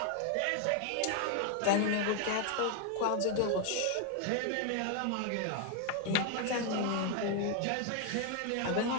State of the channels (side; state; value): both; different; correlation 0.01